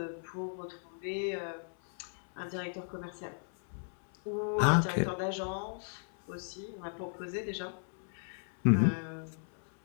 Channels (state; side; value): silent; right; 54 dB below the other